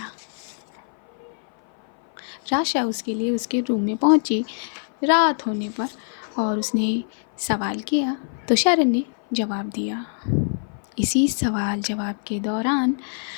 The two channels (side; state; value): right; silent; 56 dB below the other